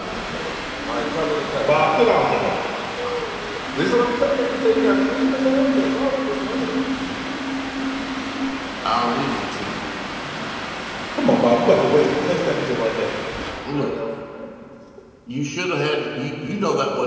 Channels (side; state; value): both; identical; correlation 1.00